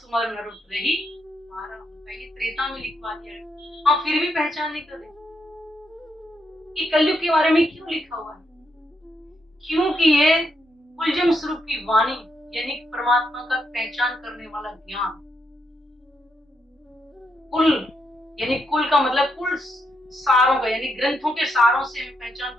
नर उतरहि पारा। ये त्रेता में लिखवा दिया है, हम फिर भी पहचान नहीं कर रहे कि कलयुग के बारे में क्यों लिखा हुआ है। क्योंकि ये कुलजम स्वरूप की वाणी, यानी परमात्मा का पहचान करने वाला ज्ञान। कुल यानी कुल का मतलब कुल सारों का, यानी ग्रंथों के सारों से हमें पहचान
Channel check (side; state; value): both; normal; correlation 0.80